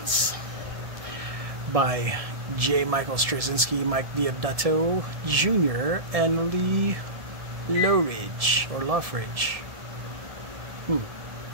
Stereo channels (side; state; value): left; late; 1.7 ms